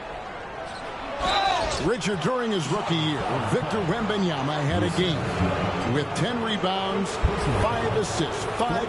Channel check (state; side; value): identical; both; correlation 1.00